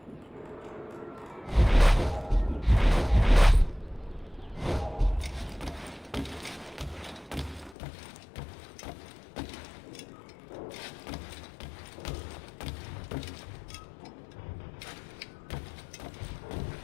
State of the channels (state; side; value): drops out; right; at 7.8 s